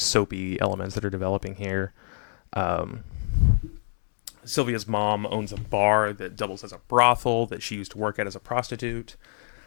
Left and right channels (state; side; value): silent; right; digital silence